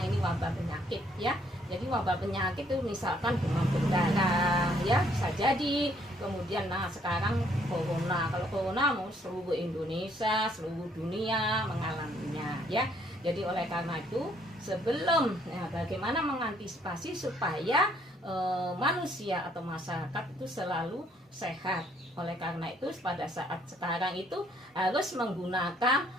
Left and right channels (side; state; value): both; normal; correlation 0.66